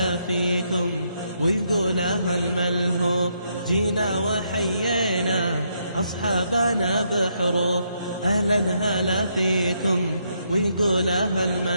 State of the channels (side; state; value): both; inverted; correlation -0.76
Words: فيكم ويقول أهل ملهوف. جينا وحيينا أصحابنا بحروف، أهلا هلا فيكم ويقول أهل